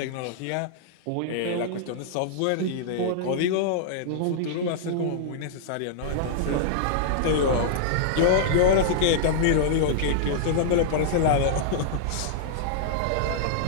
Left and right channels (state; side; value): different; both; correlation -0.02